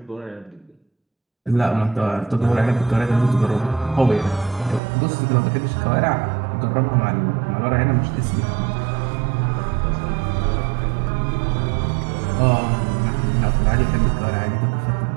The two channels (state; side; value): drops out; left; at 4.8 s